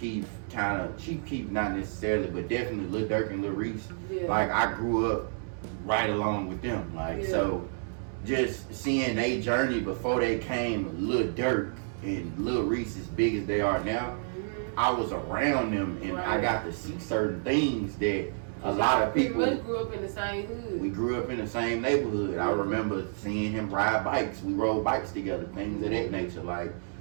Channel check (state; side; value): silent; left; digital silence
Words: not necessarily, but definitely Lil Durk and Lil Reese. Yeah. Like I grew up right along with them. Like so just seeing their journey before they came Lil Durk and Lil Reese as big as they are now, I was around them and I got to see certain things that a lot of people grew up in the same hood. We grew up in the same neighborhood. I remember seeing him ride bikes. We rode bikes together, things of that nature. Like